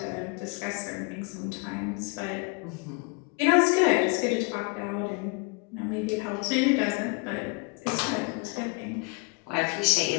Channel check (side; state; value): right; quieter; 29.7 dB